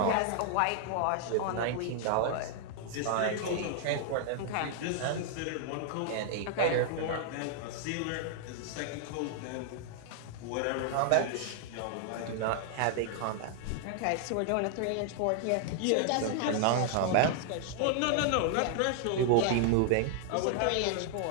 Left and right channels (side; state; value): both; different; correlation 0.00